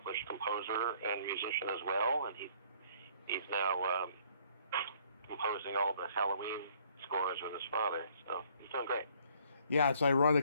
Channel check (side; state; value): both; inverted; correlation -0.61